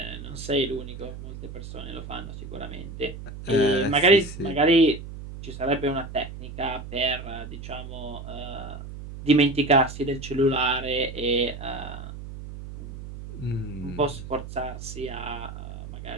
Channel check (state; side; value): noise; right; hum, 11 dB below the sound